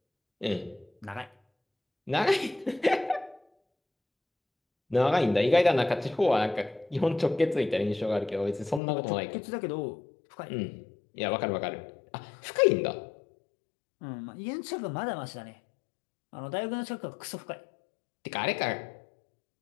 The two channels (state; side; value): drops out; right; at 8.8 s